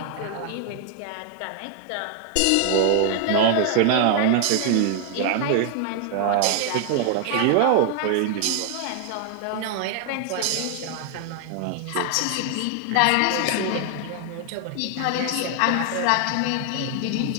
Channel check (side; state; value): both; different; correlation 0.00